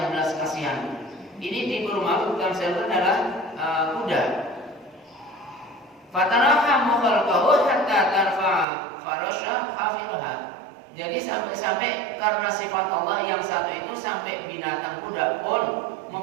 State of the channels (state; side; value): drops out; left; at 8.7 s